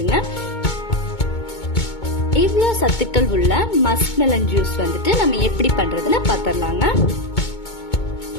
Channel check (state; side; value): late; right; 2.2 ms